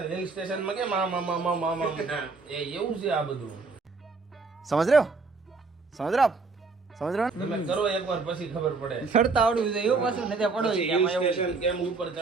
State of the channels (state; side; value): quieter; left; 4.1 dB